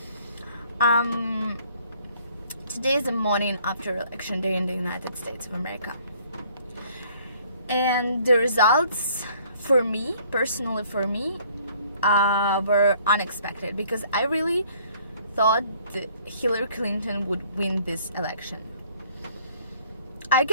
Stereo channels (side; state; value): both; inverted; correlation -0.60